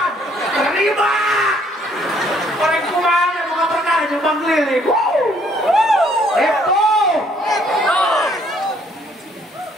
terima orang kumaha boga perkara nyebang keliling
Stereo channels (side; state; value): both; normal; correlation 0.65